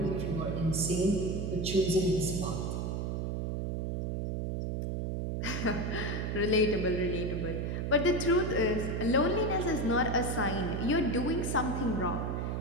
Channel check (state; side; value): noise; right; hum, 1 dB below the sound